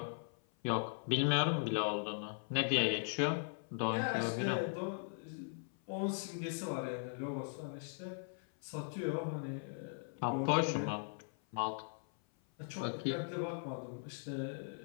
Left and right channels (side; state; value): right; silent; 52 dB below the other